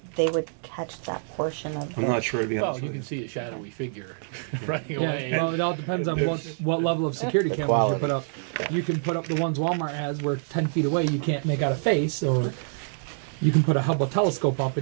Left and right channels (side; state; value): left; silent; digital silence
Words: they would catch that portion of I'm not sure to be well, honest you with can you. see a shadowy figure running away. Well, it all depends on what level of security The cameras quality. you put up. You can put up the ones Walmart has where 10 feet away you can't make out a face, or you can put a Hubble telescope up